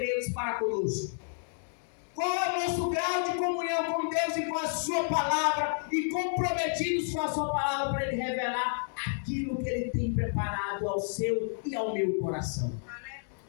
para conosco? Qual é o nosso grau de comunhão com Deus e com a sua palavra, e comprometidos com a sua palavra para Ele revelar aquilo que Ele tem preparado ao seu e ao meu coração.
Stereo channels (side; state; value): right; silent; digital silence